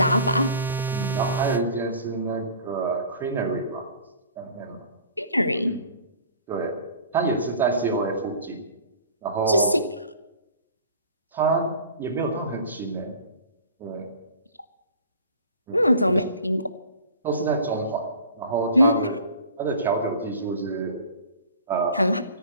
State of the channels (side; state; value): both; inverted; correlation -0.44